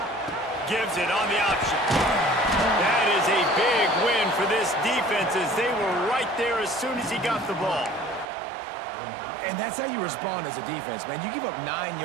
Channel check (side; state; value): left; drops out; at 8.2 s